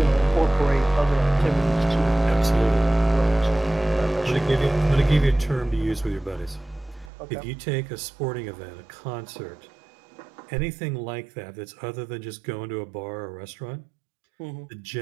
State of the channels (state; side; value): drops out; left; at 7.1 s